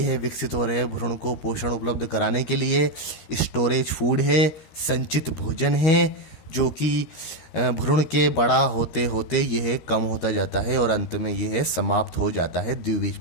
विकसित हो रहे भ्रूण को पोषण उपलब्ध कराने के लिए स्टोरेज फूड है, संचित भोजन है, जो कि भ्रूण के बड़ा होते होते यह कम होता जाता है और अंत में यह समाप्त हो जाता है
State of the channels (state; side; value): late; right; 13 ms